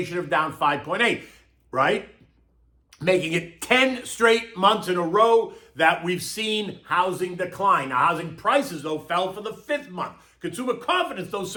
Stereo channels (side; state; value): both; identical; correlation 1.00